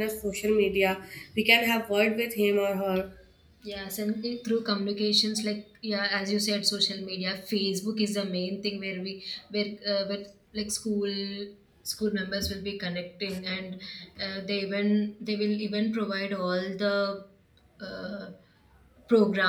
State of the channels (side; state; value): both; identical; correlation 1.00